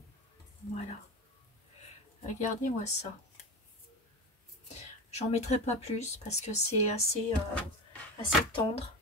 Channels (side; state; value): both; normal; correlation 0.25